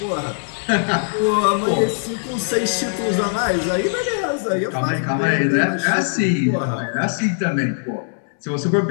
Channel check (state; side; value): silent; right; digital silence